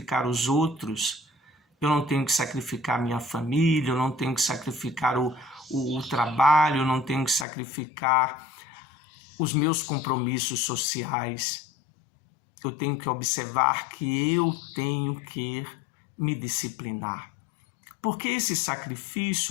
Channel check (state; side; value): drops out; right; at 7.5 s